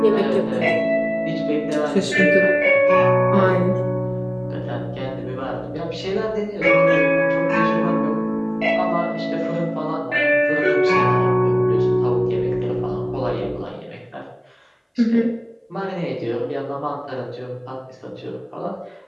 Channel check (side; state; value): both; identical; correlation 1.00